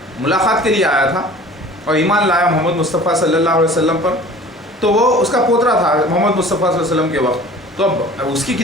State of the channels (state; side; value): normal; both; correlation 0.45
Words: ملاقات کے لیے آیا تھا اور ایمان لایا محمد مصطفیٰ صلی اللہ علیہ وسلم پر، تو وہ اس کا پوترا تھا محمد مصطفیٰ صلی اللہ علیہ وسلم کے وقت۔ تو اب اس کی